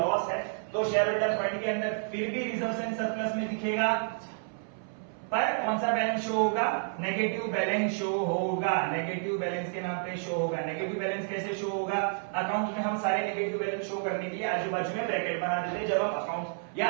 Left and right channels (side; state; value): left; silent; 58 dB below the other